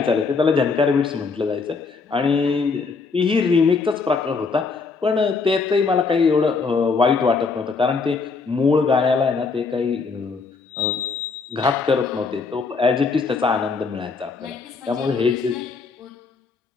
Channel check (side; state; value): right; quieter; 4.6 dB